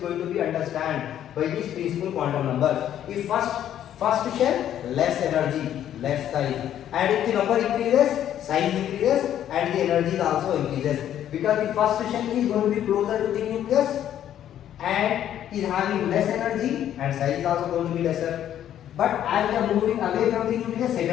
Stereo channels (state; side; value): quieter; right; 10.9 dB